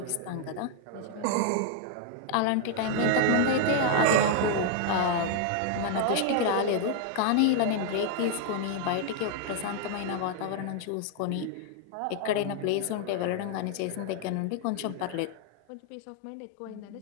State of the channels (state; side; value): different; both; correlation 0.00